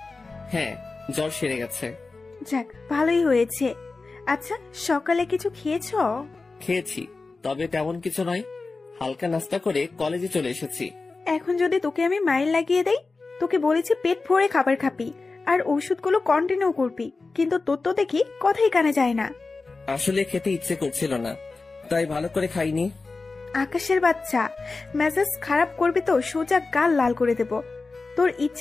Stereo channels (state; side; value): quieter; right; 3.8 dB